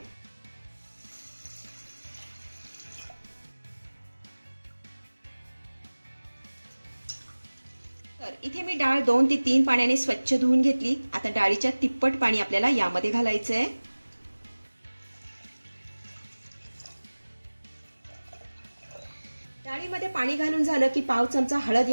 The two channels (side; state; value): both; inverted; correlation -1.00